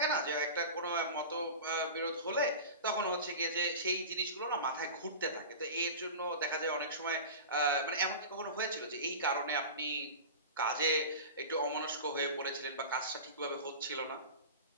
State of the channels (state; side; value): inverted; both; correlation -0.31